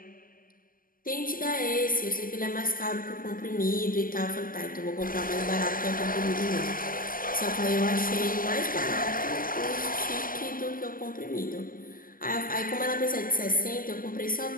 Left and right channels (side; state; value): right; late; 0.41 ms